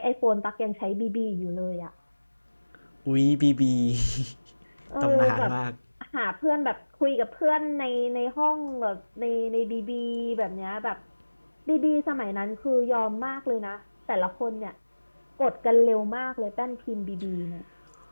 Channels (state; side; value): inverted; both; correlation -1.00